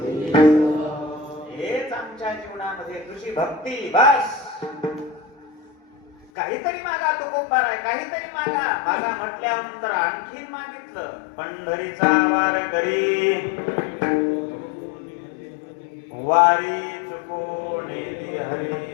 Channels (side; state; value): right; drops out; at 6.3 s